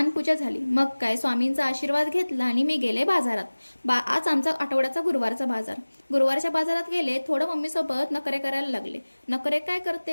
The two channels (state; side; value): inverted; both; correlation -1.00